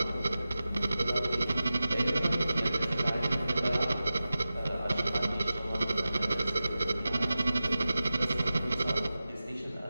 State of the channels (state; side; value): inverted; both; correlation -0.94